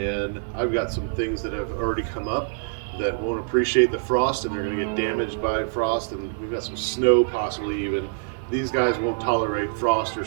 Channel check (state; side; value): silent; left; 62 dB below the other